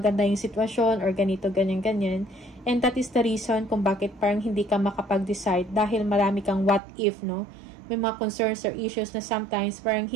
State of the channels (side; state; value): left; drops out; at 6.8 s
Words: yung sitwasyon or ganito, ganyan. And that is the reason kung bakit parang hindi ka makapag-decide, dahil marami kang what if, no? May mga concerns or issues na sometimes parang